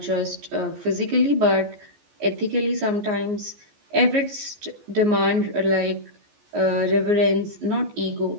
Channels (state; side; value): late; left; 14 ms